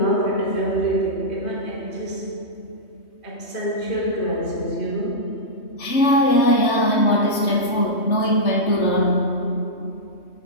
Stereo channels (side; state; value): right; late; 3.2 ms